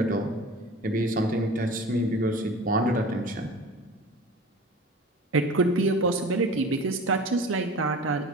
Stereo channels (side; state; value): both; normal; correlation 0.38